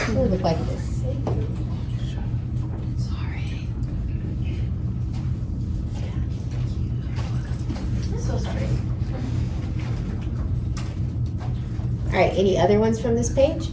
would look like this. All right, any other ones from this page?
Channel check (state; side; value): identical; both; correlation 1.00